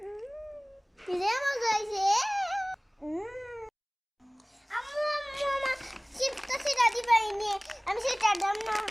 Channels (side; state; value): both; identical; correlation 1.00